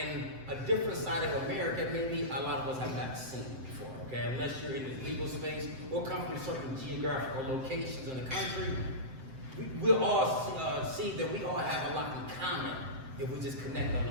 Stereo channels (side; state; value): left; late; 7.7 ms